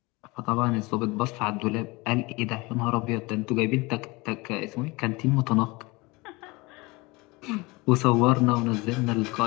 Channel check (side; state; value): right; quieter; 24.3 dB